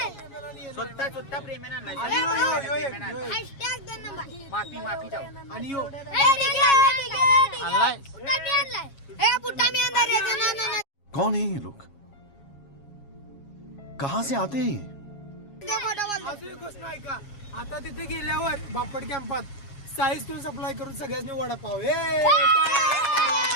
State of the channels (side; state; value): right; late; 7.3 ms